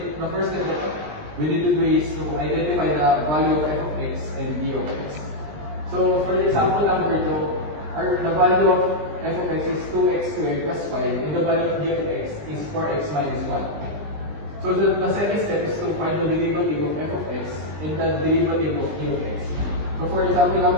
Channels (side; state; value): left; late; 20 ms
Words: that we need to do is to identify the value of f of x and g of x. So, for the example number 2, the value of f of x is 2x squared plus 5, and the value of g of x is 4x minus 1. So, the second step is to find the derivative of f of x and the derivative of g of x. So, for example